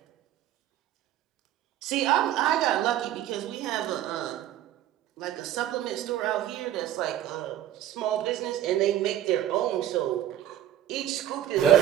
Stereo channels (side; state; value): left; quieter; 11.9 dB